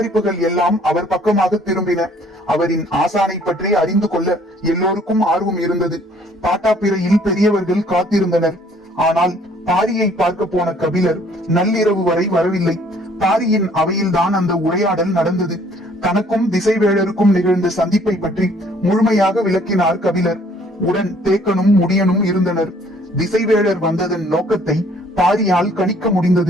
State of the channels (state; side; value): normal; both; correlation 0.60